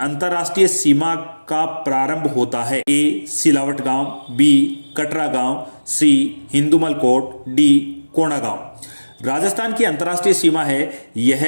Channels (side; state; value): both; inverted; correlation -1.00